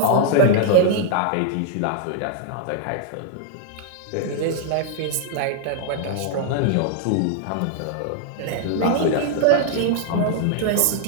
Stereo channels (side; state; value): both; different; correlation -0.01